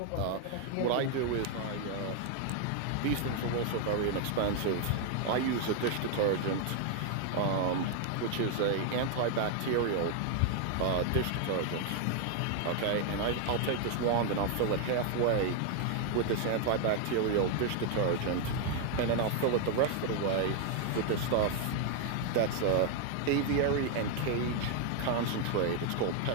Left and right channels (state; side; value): different; both; correlation 0.00